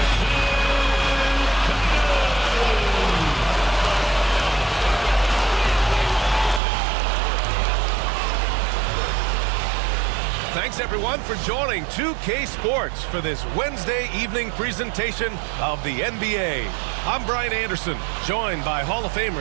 Thanks, everyone, for joining 2K Sports for this Wednesday evening presentation of the NBA. I'm Brian Anderson, joined by Hall of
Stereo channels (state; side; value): drops out; left; at 6.6 s